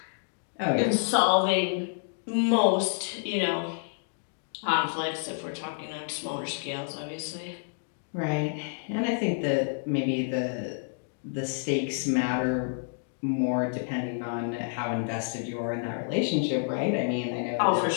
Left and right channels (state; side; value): silent; right; digital silence